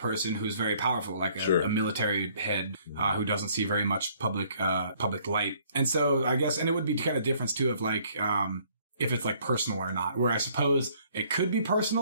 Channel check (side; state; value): both; inverted; correlation -0.61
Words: who's very powerful, like a military head who doesn't see very much public light. And so I guess, and it would be kind of difference too of like, if it's like personal or not, where I suppose it could be